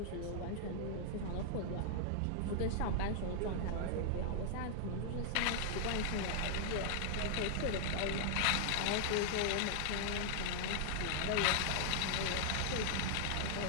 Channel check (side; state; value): both; different; correlation -0.01